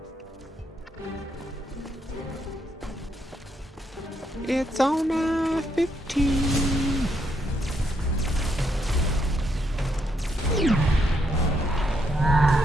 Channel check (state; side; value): normal; both; correlation 0.77